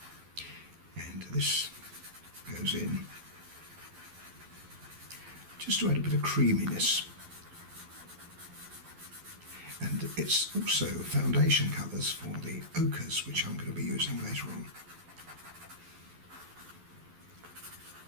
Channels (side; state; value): left; late; 12 ms